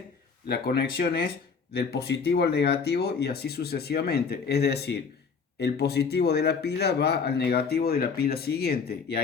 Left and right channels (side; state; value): right; quieter; 5.5 dB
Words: la conexión es del positivo al negativo y así sucesivamente. Es decir, el positivo de la pila va al negativo de la pila siguiente y